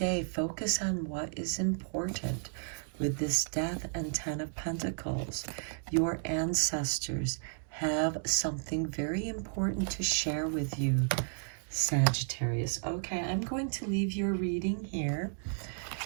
focus on what is important. With this Death and Ten of Pentacles, your ancestors have something very important to share with you, Sagittarius. Okay, I'm going to leave your reading here,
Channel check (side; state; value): left; silent; digital silence